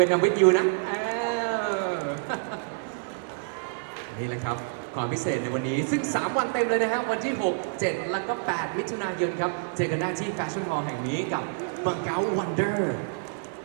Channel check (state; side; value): silent; left; digital silence